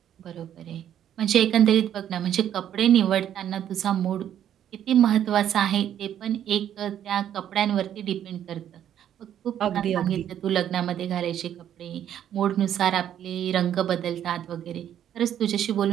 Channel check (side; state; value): left; quieter; 10.3 dB